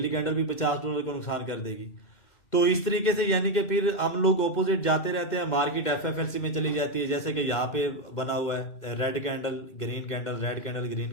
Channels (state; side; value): late; right; 2.1 ms